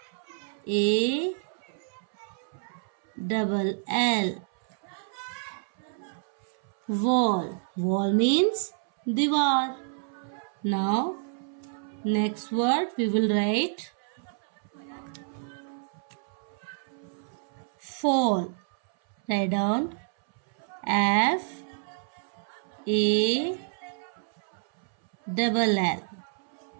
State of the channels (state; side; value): silent; left; 59 dB below the other